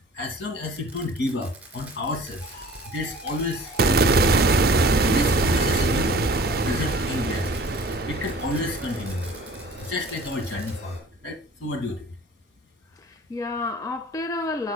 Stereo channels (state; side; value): normal; both; correlation 0.46